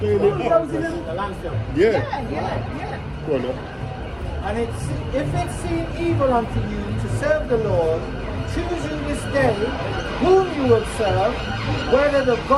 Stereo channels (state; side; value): identical; both; correlation 1.00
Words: it up. Bulldozing them. The landfill. Yeah. Yeah. Go on now. And if it seem evil unto you to serve the Lord, choose you this day whom you will serve, whether the